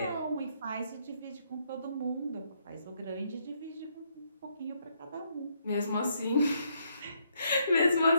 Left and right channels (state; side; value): inverted; both; correlation -0.74